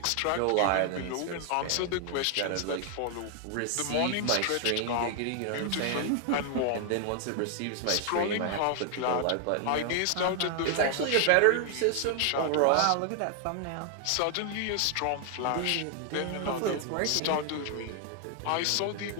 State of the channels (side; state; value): both; different; correlation 0.00